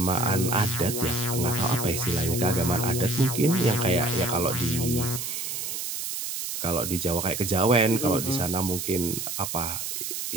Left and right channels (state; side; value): noise; right; hiss, 4 dB below the sound